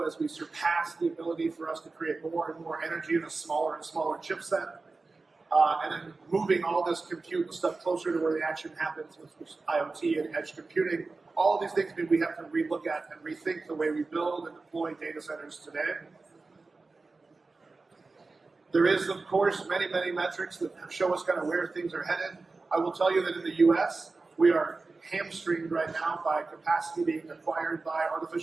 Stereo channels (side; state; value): left; quieter; 3.8 dB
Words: as we surpass the ability for us to create more and more energy in a smaller and smaller chipset. And then moving all this compute and stuff closer to where the action happens with IoT and edge computing. All of these things mean we have to relook at and rethink the way we build and deploy data centers today. There is, of course, many metrics that show us kind of where things are headed. I will tell you that in the US, we are hamstringed right now by capacity being acquired by